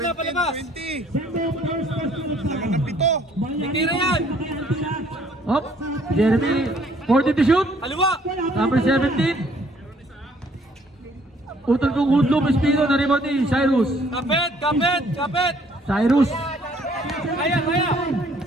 palabas. 20. Sendo first question. Lamang ng pito. Tira yan. Up. Jeremy. 40 to shoot. Kaliwa. Number 17. Utol kong Hudlum Espino na rebound ni Cyrus. Kapit, kapit, kapit. Cyrus. Kaya, kaya.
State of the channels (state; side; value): normal; both; correlation 0.61